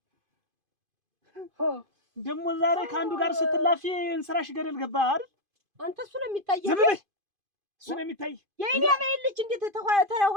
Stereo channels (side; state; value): left; late; 2.5 ms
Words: ደግሞ ዛሬ ከአንዱ ጋር ስትላፊ እንስራሽ ገደል ገባ አይደል? አንተ እሱ ነው የሚታየው። እሱ ነው የሚታይ። የኔ አበባ ልጅ እንዴት